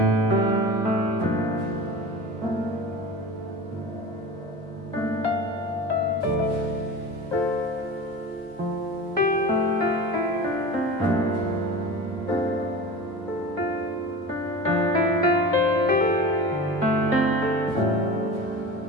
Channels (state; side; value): normal; both; correlation 0.33